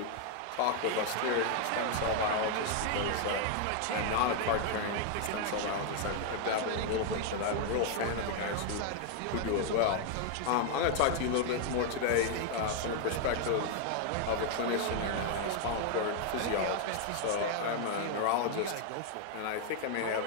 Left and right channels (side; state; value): both; different; correlation 0.00